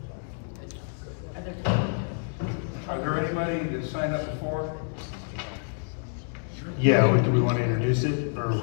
Are there anybody that signed up before? Yeah, do we want to introduce it, or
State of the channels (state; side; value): silent; right; 59 dB below the other